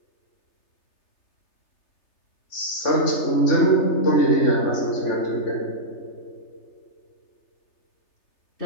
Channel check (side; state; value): right; late; 3.3 ms